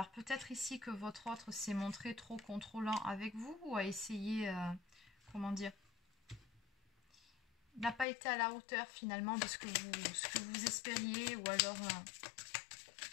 peut-être ici que votre autre s'est montré trop contrôlant avec vous ou a essayé, comment dire, n'a pas été à la hauteur finalement de ce que vous espériez ou alors...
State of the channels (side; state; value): right; drops out; at 8.1 s